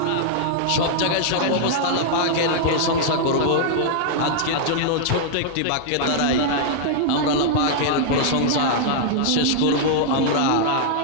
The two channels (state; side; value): different; both; correlation -0.01